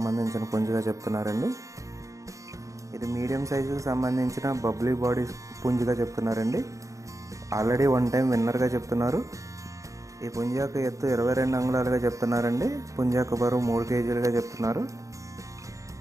పుంజుగా చెప్తున్నారండి. ఇది మీడియం సైజుకి సంబంధించిన బబ్లీ బాడీ పుంజుగా చెప్తున్నారండి. ఆల్రెడీ 1 టైం విన్నర్గా చెప్తున్నారు. ఈ పుంజు యొక్క ఎత్తు 22 అంగుళాలుగా చెప్తున్నారండి. పుంజు యొక్క బరువు 3 కేజీలుగా చెప్తున్నారు.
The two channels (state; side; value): late; left; 0.16 ms